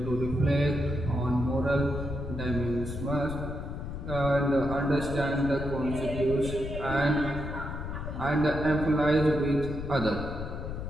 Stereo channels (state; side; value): noise; left; rumble, 7 dB below the sound